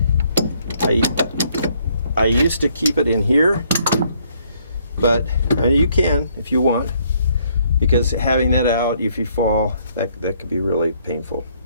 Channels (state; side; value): inverted; both; correlation -0.67